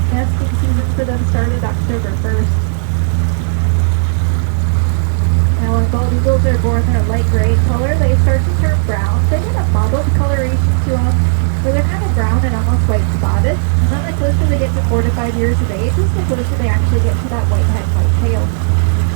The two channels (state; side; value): silent; left; digital silence